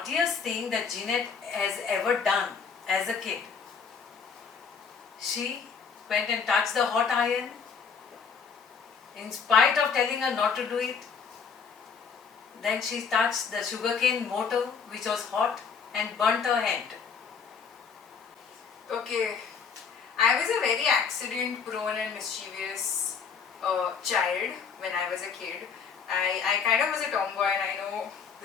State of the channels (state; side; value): quieter; right; 6.1 dB